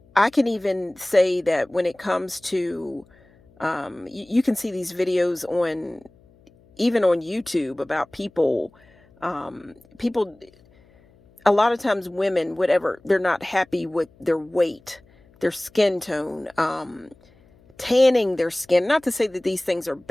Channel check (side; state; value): left; noise; hum, 30 dB below the sound